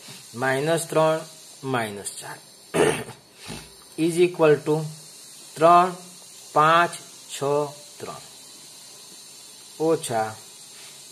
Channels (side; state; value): both; identical; correlation 1.00